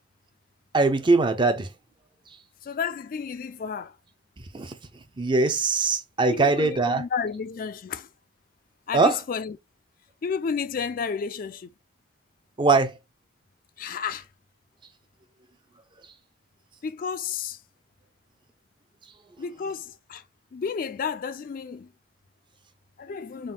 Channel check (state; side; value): normal; both; correlation 0.33